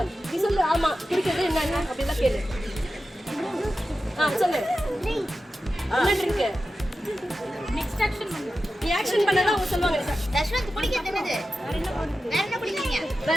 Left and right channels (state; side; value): normal; both; correlation 0.92